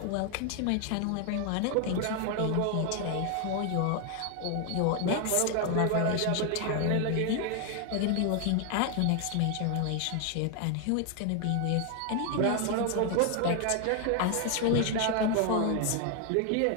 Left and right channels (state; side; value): different; both; correlation 0.00